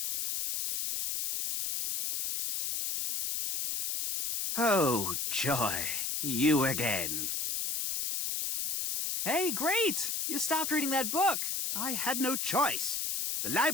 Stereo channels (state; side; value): noise; left; hiss, 1 dB below the sound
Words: Oh, joy. You again. Hey, great! You stopped reading that book. I had no choice. The